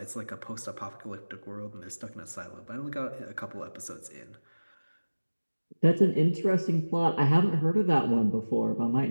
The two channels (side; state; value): both; inverted; correlation -1.00